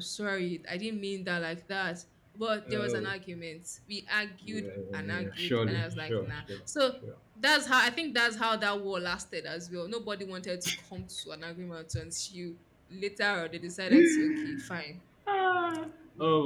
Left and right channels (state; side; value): identical; both; correlation 1.00